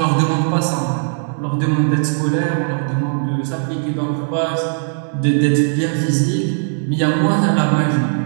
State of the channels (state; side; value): silent; left; digital silence